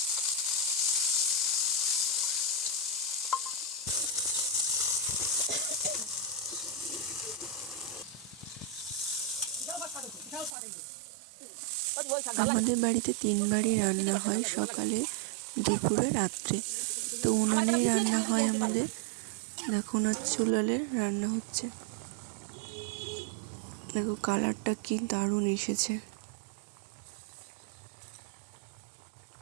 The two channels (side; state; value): left; drops out; at 10.6 s